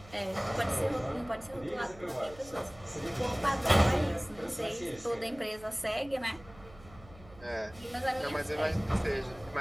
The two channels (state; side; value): noise; right; hum, 21 dB below the sound